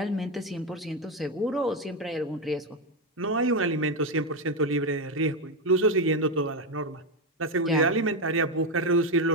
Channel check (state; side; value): normal; both; correlation 0.09